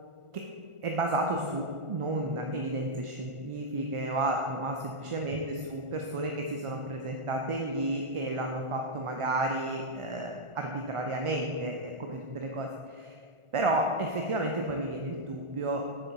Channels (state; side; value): late; left; 1.4 ms